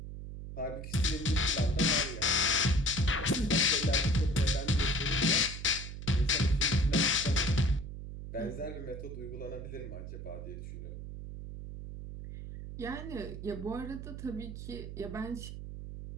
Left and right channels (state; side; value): noise; right; hum, 9 dB below the sound